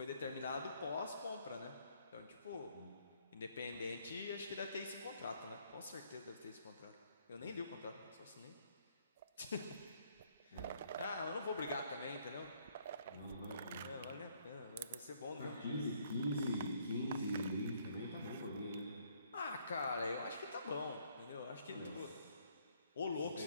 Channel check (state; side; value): inverted; both; correlation -0.67